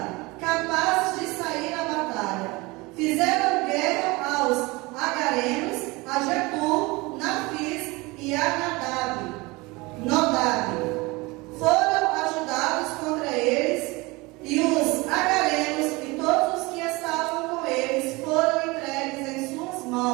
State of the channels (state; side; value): quieter; left; 23.8 dB